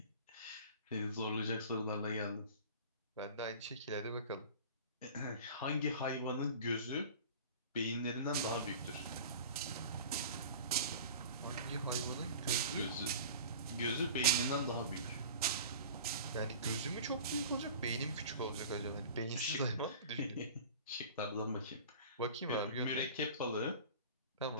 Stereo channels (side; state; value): both; inverted; correlation -0.39